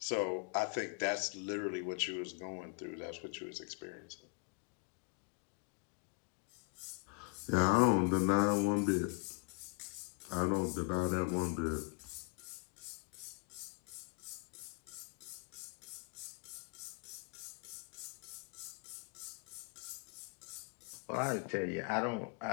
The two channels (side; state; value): right; quieter; 34.9 dB